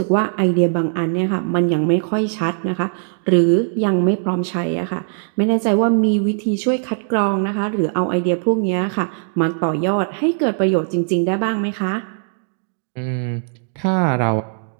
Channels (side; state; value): left; silent; digital silence